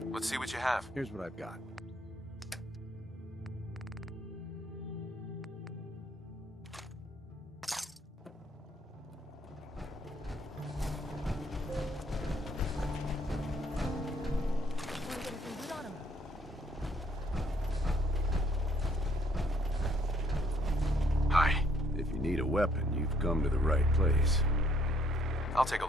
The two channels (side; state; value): both; normal; correlation 0.66